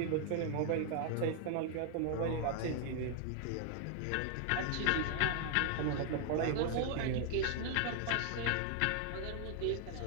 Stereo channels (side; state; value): both; different; correlation 0.00